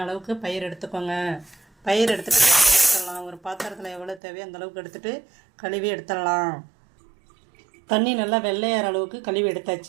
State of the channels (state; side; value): drops out; left; at 4.2 s